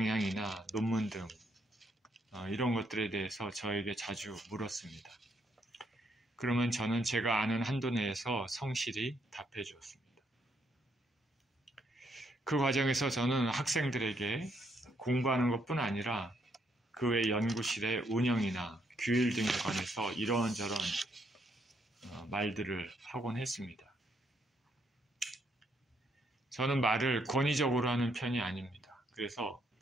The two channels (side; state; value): both; normal; correlation 0.74